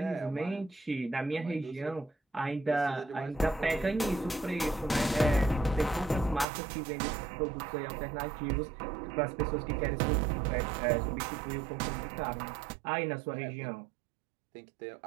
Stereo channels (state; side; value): drops out; left; at 6.5 s